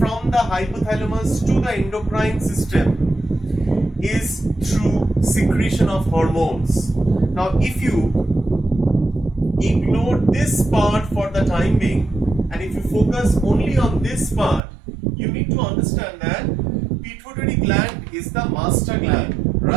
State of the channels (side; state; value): left; drops out; at 14.6 s